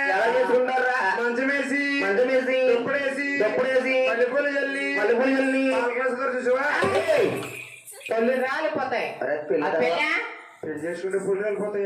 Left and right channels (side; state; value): both; identical; correlation 1.00